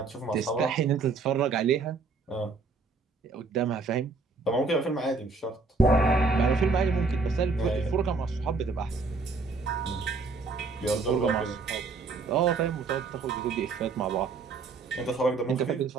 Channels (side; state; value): left; quieter; 4.2 dB